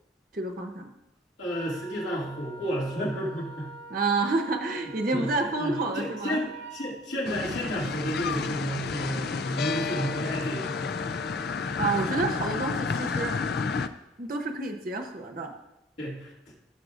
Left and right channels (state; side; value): normal; both; correlation 0.49